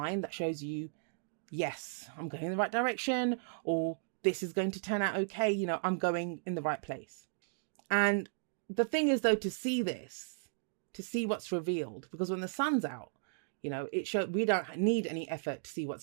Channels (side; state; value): left; silent; digital silence